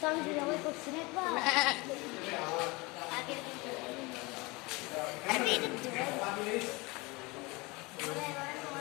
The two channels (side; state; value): right; quieter; 25.0 dB